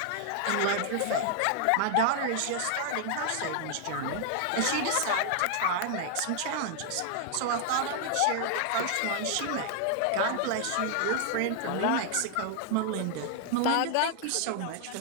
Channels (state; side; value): different; both; correlation 0.00